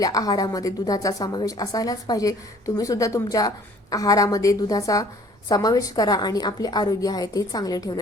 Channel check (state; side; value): normal; both; correlation 0.55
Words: आहारामध्ये दुधाचा समावेश असायलाच पाहिजे. तुम्ही सुद्धा तुमच्या आहारामध्ये दुधाचा समावेश करा आणि आपले आरोग्य आहे ते चांगले